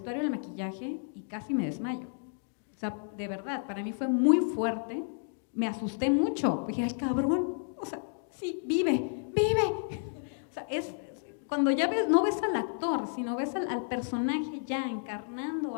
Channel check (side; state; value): right; silent; digital silence